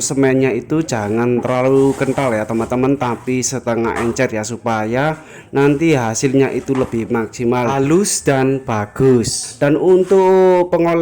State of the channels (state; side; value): identical; both; correlation 1.00